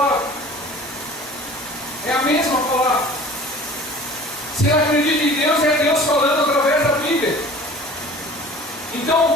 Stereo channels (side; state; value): both; normal; correlation 0.44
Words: É a mesma palavra. Se ela acredita em Deus, é Deus falando através da Bíblia.